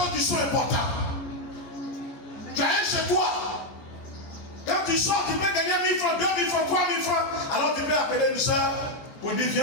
qui sont importantes. Tu as un chez toi. Quand tu sors, tu peux gagner 1000 francs, 2000 francs, 3000 francs. Alors tu peux appeler une soeur pour dire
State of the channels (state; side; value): late; right; 14 ms